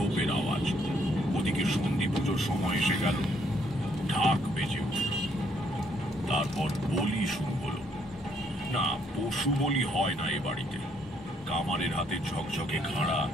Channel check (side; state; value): both; normal; correlation 0.69